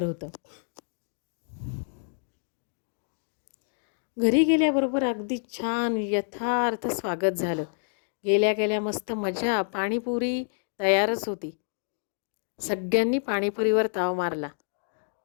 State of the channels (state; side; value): silent; right; digital silence